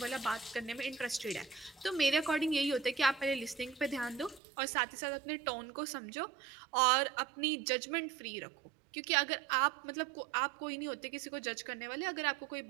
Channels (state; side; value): drops out; left; at 4.4 s